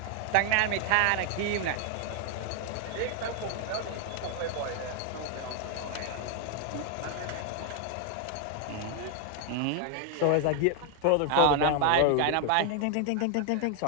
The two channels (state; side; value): different; both; correlation 0.00